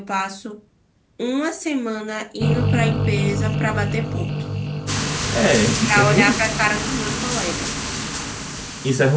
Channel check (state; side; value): identical; both; correlation 1.00